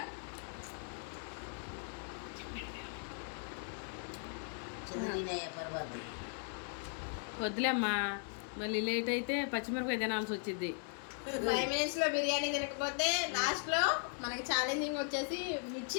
వద్దులేమ్మా, మళ్ళీ లేట్ అయితే పచ్చిమిరపకాయ తినాల్సి వచ్చింది. 5 minutes లో బిర్యానీ తినకపోతే లాస్ట్ లో మనకి ఛాలెంజింగ్ వచ్చేసి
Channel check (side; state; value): right; silent; 52 dB below the other